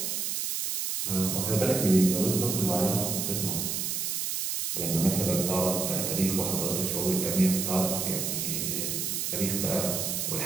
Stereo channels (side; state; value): right; noise; hiss, 1 dB below the sound